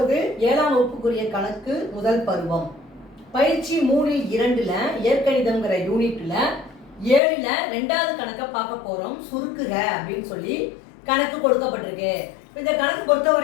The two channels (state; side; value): drops out; right; at 7.2 s